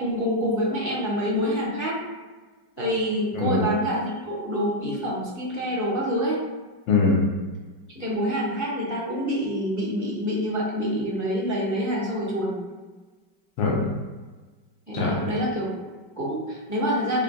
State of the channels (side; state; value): right; late; 5.2 ms